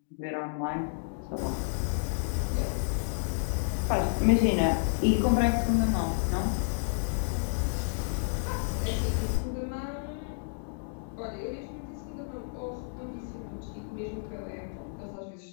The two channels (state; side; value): silent; right; digital silence